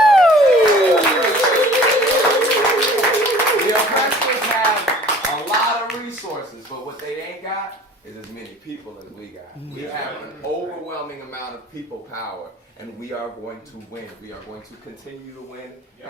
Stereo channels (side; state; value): both; normal; correlation 0.48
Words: The oppressors have a lot of resources, but what they ain't got is as many people as we got. We have an overwhelming amount of people power, and we are going to win. We are going to continue to win,